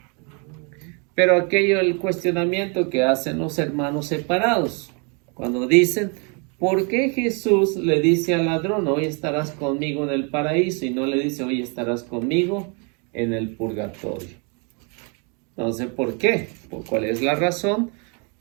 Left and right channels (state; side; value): quieter; left; 34.9 dB